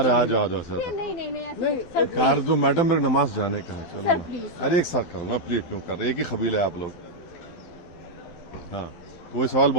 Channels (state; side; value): late; right; 12 ms